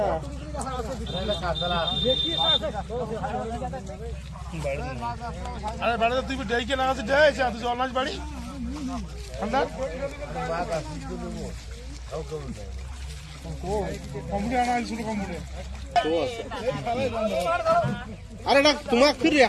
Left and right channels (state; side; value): identical; both; correlation 1.00